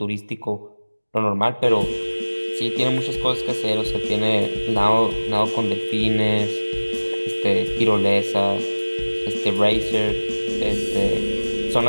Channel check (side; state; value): both; inverted; correlation -1.00